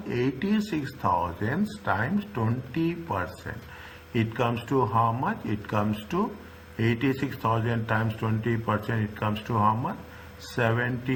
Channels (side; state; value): both; identical; correlation 1.00